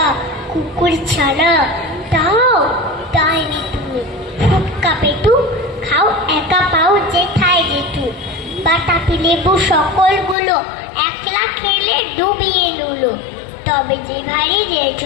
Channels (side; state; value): right; drops out; at 10.4 s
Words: কুকুর ছানা তাও তাইনি তুমি, ফুটকা পেটু খাও একা পাও যেথায় যেটু, বাতাবি লেবু সকলগুলো একলা খেলে ডুবিয়ে নুলো, তবে যে ভারী রে